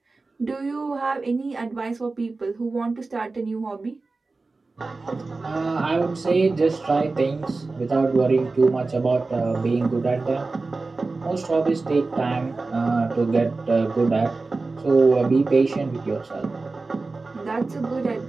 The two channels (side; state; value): left; quieter; 3.7 dB